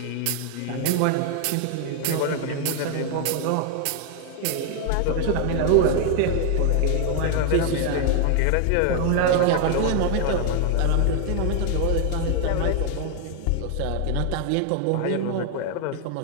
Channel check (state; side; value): different; both; correlation 0.00